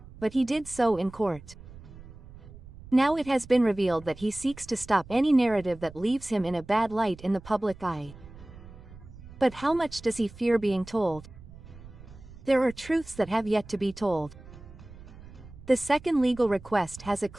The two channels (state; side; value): noise; right; rumble, 18 dB below the sound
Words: but he did so in court. Now it has been revealed that he seeks to stop any narrative that leaves him in a bad light in the public eye. But how much does he fear being told? There are truths that have yet to be told. The second legal request has a